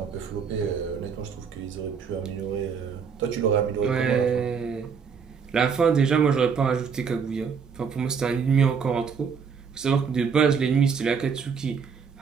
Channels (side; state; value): left; quieter; 6.2 dB